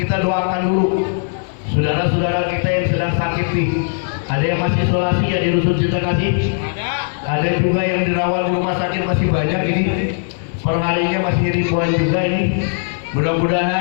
doakan dulu saudara-saudara kita yang sedang sakit nih. Ada yang masih isolasi ya di Rusun Cinta Kasih. Ada juga yang dirawat di rumah sakit, masih banyak ini. Perharinya masih ribuan juga ini.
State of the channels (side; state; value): right; silent; 57 dB below the other